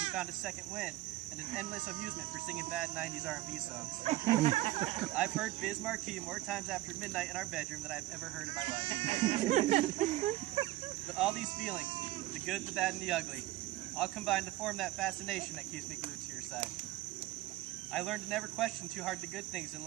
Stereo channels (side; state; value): left; quieter; 16.6 dB